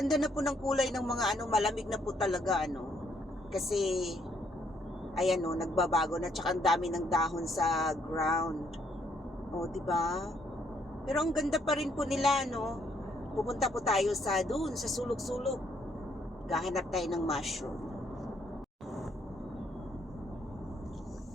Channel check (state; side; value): normal; both; correlation 0.70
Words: na po ng kulay ng mga malamig na po talaga Kasi ayan nagbabago na, tsaka ang dami ng dahon sa ground. O, di ba? Pero ang ganda pa rin po nila, Pupunta po tayo sa sulok-sulok. Gahanap tayo ng mushroom.